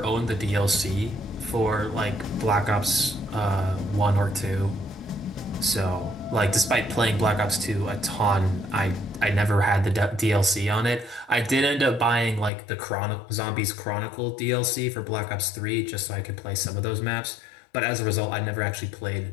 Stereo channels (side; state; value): right; drops out; at 12.5 s